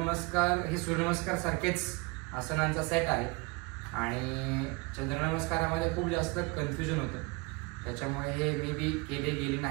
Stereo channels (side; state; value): left; quieter; 27.2 dB